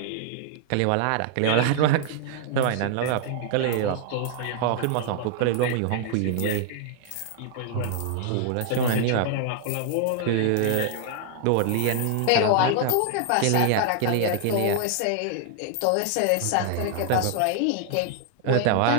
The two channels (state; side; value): different; both; correlation 0.00